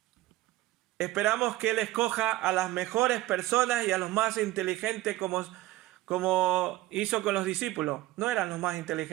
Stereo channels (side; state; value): left; quieter; 16.8 dB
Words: Esperamos que Él escoja a las mejores personas y a los más inteligentes, como hizo con los discípulos. No eran los más